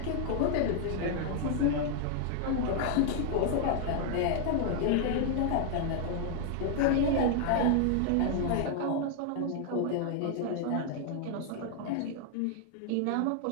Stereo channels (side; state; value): both; different; correlation 0.00